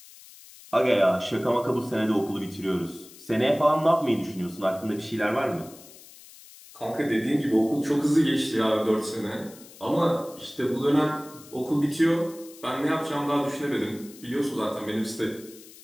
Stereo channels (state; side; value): noise; left; hiss, 20 dB below the sound